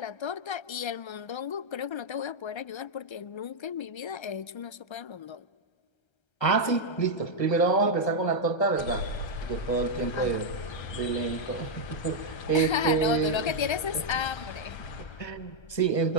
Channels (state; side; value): late; right; 1.3 ms